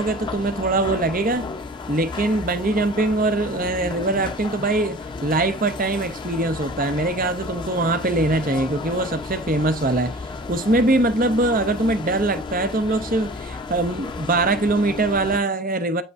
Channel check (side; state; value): both; normal; correlation 0.42